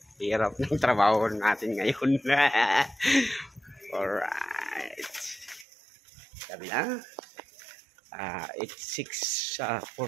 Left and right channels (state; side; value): drops out; left; at 5.7 s